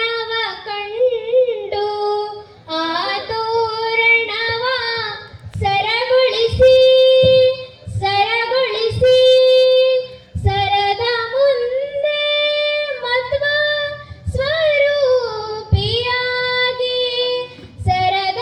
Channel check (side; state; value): both; identical; correlation 1.00